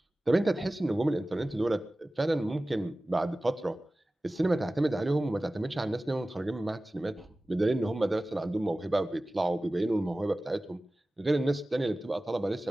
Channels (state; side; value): normal; both; correlation 0.97